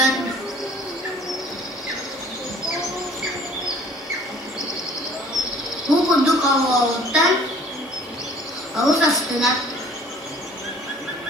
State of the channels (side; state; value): both; normal; correlation 0.53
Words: Bu kuduk avağıdan ağız astına.